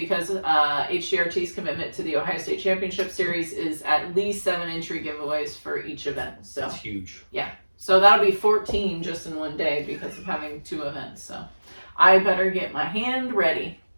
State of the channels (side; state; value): both; inverted; correlation -1.00